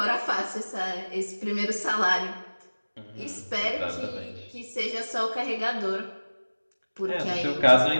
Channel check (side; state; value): both; inverted; correlation -1.00